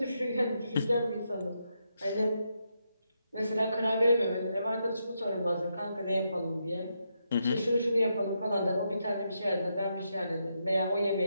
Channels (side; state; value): both; inverted; correlation -0.82